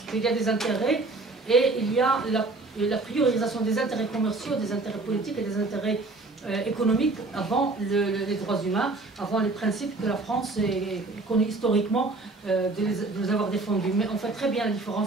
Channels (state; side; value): quieter; left; 3.3 dB